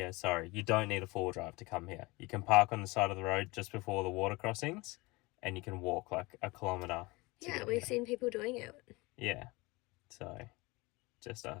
sorry. You don't need a four-wheel drive to come here. You can park on the side of the road just before the water crossings and you can walk like a kilometre. Yeah, we've seen people doing it. Yeah, so just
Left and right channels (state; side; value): quieter; right; 23.8 dB